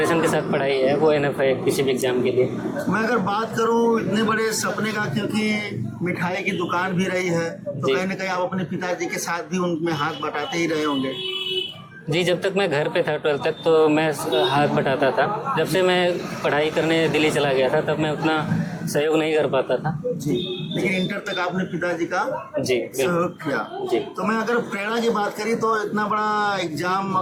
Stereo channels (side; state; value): both; identical; correlation 1.00